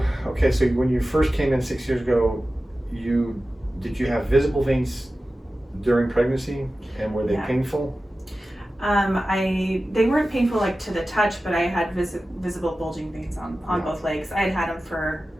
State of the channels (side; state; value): both; normal; correlation 0.95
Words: when you first came in 6 years ago, did you have visible veins during pregnancy, and were they painful? They weren't painful like to the touch, but I had visible bulging veins on both legs. I had them for,